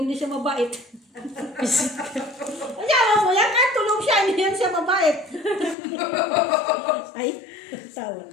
siya mabait. Ayaw mo yan, kahit tulog siya, hindi yan siya mabait. Ay, tawa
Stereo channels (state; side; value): drops out; right; at 5.8 s